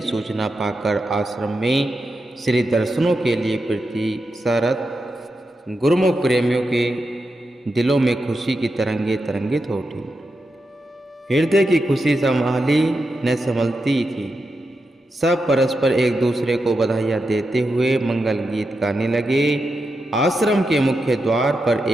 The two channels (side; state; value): both; normal; correlation 0.87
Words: सूचना पाकर आश्रम में श्री दर्शनों के लिए प्रतीक्षारत गुरुमुख प्रेमियों के दिलों में खुशी की तरंगे तरंगित हो उठी। हृदय की खुशी संभाली न संभलती थी। सब परस्पर एक दूसरे को बधाइयाँ देते हुए मंगल गीत गाने लगे। आश्रम के मुख्य द्वार पर